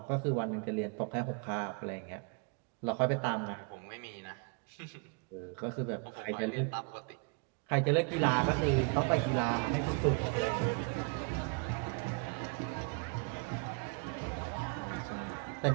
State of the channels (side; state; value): left; quieter; 35.9 dB